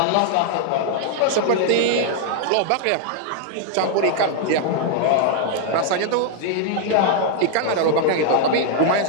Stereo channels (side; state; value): both; different; correlation 0.00